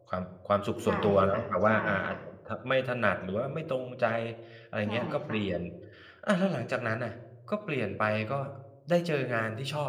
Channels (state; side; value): identical; both; correlation 1.00